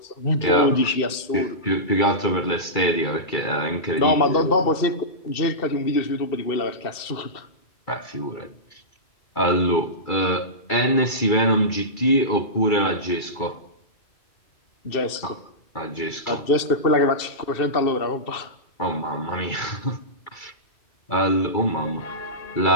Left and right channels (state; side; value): late; right; 2.7 ms